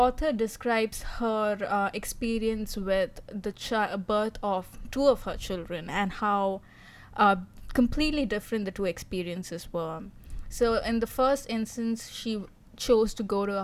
describes her experience with the birth of two of her children and how uh, completely different the two experiences were. So, in the first instance, she chose to go to a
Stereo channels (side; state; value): both; identical; correlation 1.00